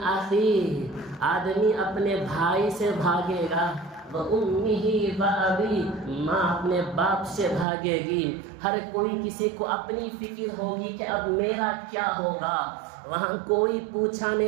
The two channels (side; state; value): left; drops out; at 7.7 s